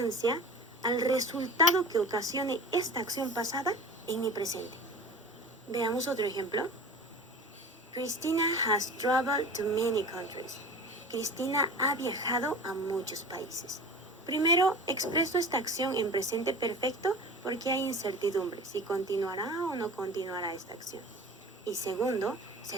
al resultado que ocasione esta acción pasada en mi presente. Veamos otro ejemplo. Christina has traveled to many countries. Cristina ha viajado a muchos países. Primero, expreso esta acción en presente perfecto porque hay incertidumbre si continuará o no continuará esta acción. Y segundo,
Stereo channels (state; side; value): normal; both; correlation 0.36